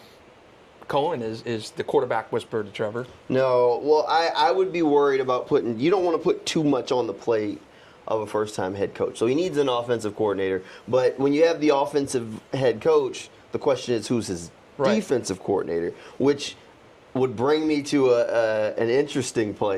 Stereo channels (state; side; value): identical; both; correlation 1.00